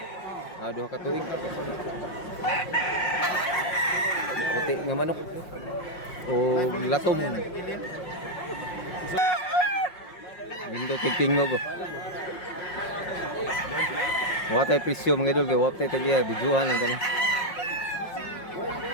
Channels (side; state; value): right; late; 5.5 ms